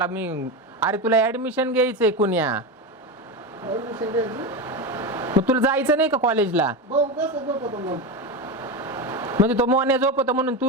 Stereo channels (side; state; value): both; normal; correlation 0.17